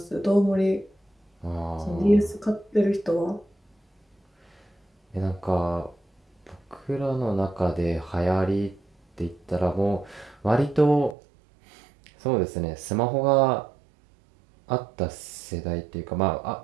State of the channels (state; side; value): drops out; left; at 11.2 s